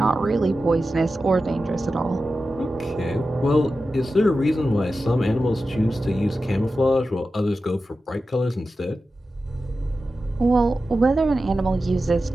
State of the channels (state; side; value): normal; both; correlation 0.92